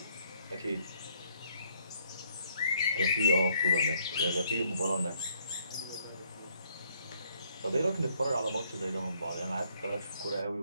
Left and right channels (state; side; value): inverted; both; correlation -0.68